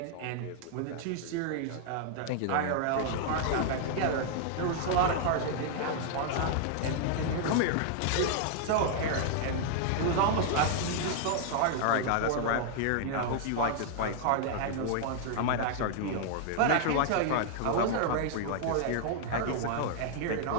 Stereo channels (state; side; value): different; both; correlation -0.01